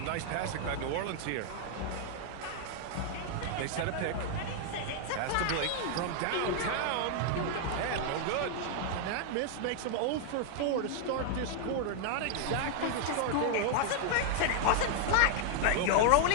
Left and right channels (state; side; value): different; both; correlation -0.01